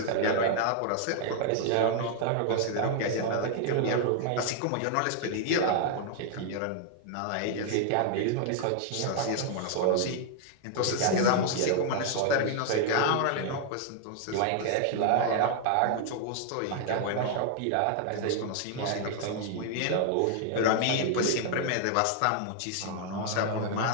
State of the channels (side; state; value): both; different; correlation 0.00